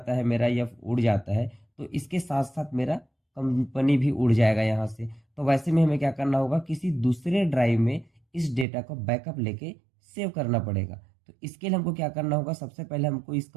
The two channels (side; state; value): left; drops out; at 8.7 s